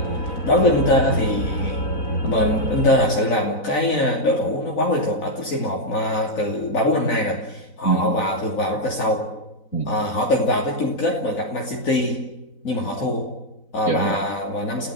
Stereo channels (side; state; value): right; late; 4.0 ms